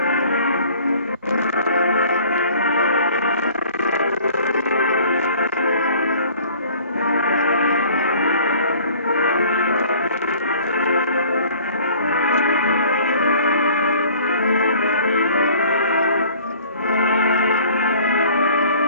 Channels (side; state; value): both; inverted; correlation -0.51